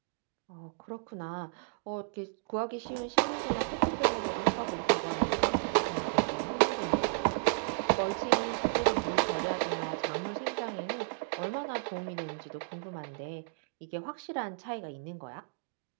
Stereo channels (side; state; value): left; silent; digital silence